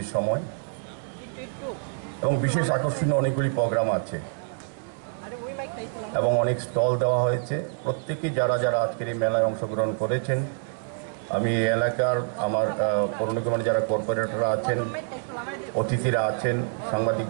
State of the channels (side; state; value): left; silent; 61 dB below the other